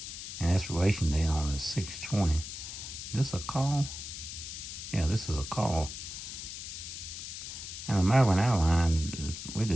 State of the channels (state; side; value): noise; left; hiss, 9 dB below the sound